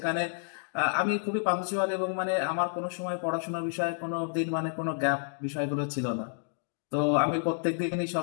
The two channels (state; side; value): silent; right; digital silence